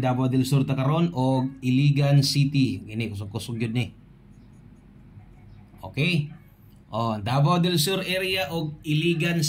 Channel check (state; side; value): identical; both; correlation 1.00